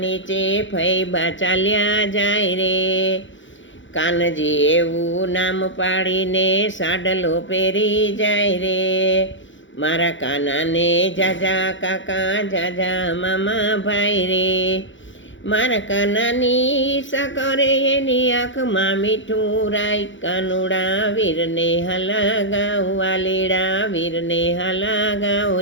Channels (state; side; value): late; right; 0.55 ms